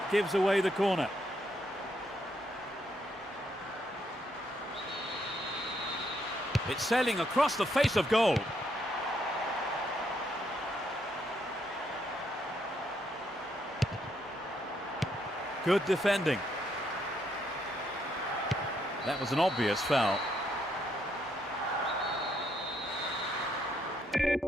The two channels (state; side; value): normal; both; correlation 0.74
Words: gives away the corner. It's sailing across the face of goal. Good defending. That was an obvious foul.